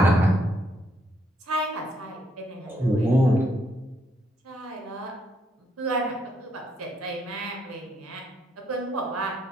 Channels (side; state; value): both; normal; correlation 0.74